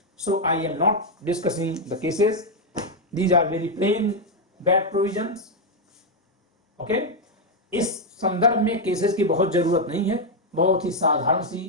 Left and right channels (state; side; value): normal; both; correlation 0.01